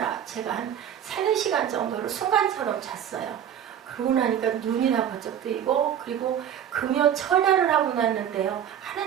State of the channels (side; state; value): left; quieter; 9.6 dB